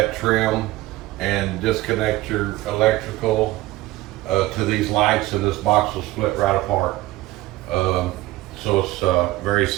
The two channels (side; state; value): left; quieter; 17.8 dB